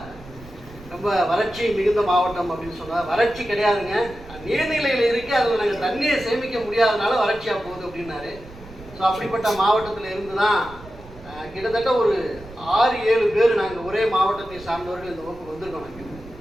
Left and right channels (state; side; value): noise; right; rumble, 18 dB below the sound